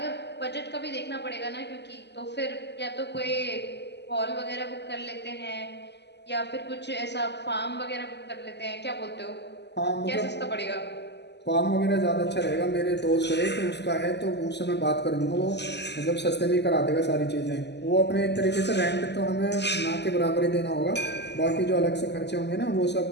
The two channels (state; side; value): late; right; 0.50 ms